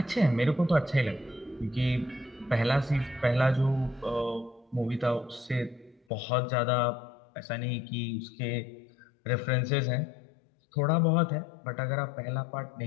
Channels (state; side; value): drops out; right; at 6.0 s